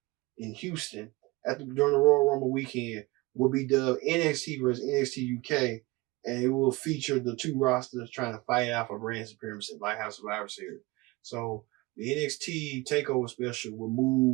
in Houston during the Royal Rumble weekend will be dubbed NXT versus NXT UK, and it will feature the two rosters trying to fight out for brand supremacy, like House Survivor Series. So the NXT TakeOver special will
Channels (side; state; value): left; quieter; 22.9 dB